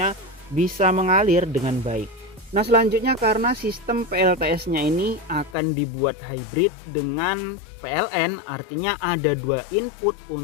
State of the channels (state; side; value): drops out; right; at 5.6 s